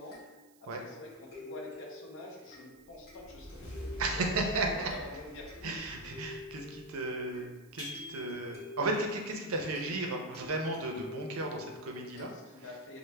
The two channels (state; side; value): noise; right; hiss, 28 dB below the sound